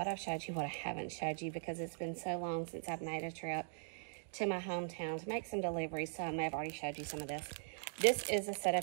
I've showed you, what I haven't showed you, because it's been so long since I've made a trip to my hometown to make some deliveries, so I may have already showed you some of this. This is a set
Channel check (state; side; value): silent; left; digital silence